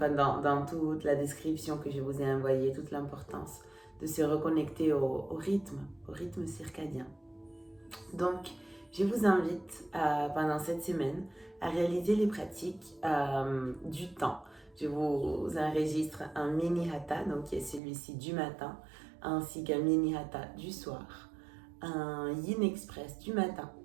toute la description que je vous ai envoyée, toute l'importance de se reconnecter au rythme circadien. Donc, je vous invite pendant cette semaine à réaliser les pratiques du temps. Je vous enregistre un mini hatha, donc qui est celui-ci du matin, ainsi qu'un mini hatha du soir, un yin express du matin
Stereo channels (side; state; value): left; drops out; at 17.8 s